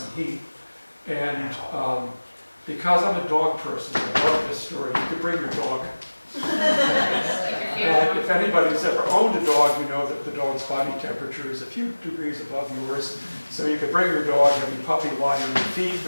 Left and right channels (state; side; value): inverted; both; correlation -1.00